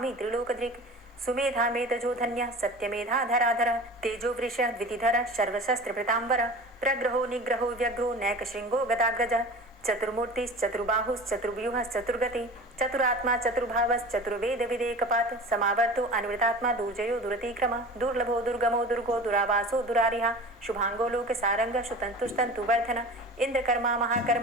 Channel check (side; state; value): both; normal; correlation 0.37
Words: त्रिलोकदृक् सुमेधा मेधजो धन्यः सत्यमेधाधराधरः तेजो वृषः द्वितिधरः सर्वशस्त्रभृताम्बरः प्रग्रहो निग्रहो व्यग्रो नैकशृङ्गो गदाग्रजः चतुर्मूर्तिश्चतुर्बाहुश्चतुर्व्यूहश्चतुर्गति चतुरात्मा चतुर्भावश्चतुर्वेदविदेकपात् समावर्तो अन्वृतात्मा दुर्जयो दुरतिक्रम दुर्लभो दुर्गमो दुर्गो दुरावासो दुरारिहा शुभांगो लोकसारंग सुतन्तुस्तन्तुवर्धन इंद्रकर्मा